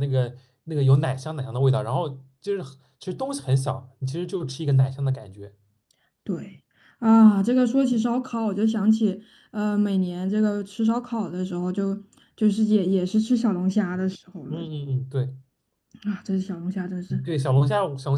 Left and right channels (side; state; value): both; identical; correlation 1.00